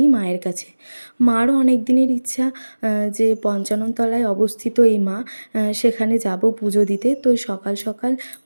মায়ের কাছে। মারও অনেক দিনের ইচ্ছা যে পঞ্চানন তলায় অবস্থিত এই মা, সেখানে যাব পুজো দিতে। তো সকাল সকাল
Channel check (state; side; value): inverted; both; correlation -1.00